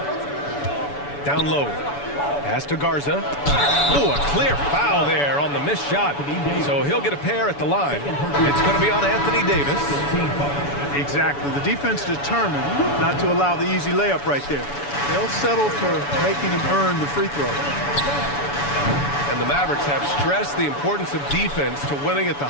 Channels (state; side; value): late; right; 7.0 ms